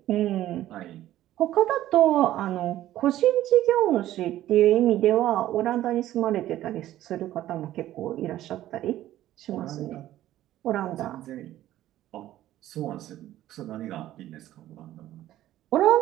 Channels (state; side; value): quieter; left; 13.7 dB